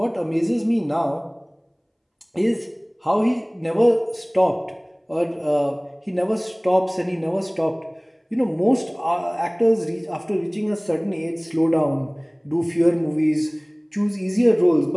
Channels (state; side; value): identical; both; correlation 1.00